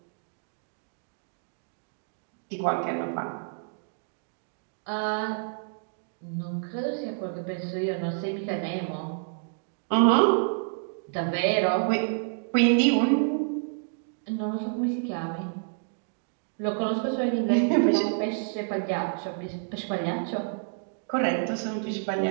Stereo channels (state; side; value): silent; left; digital silence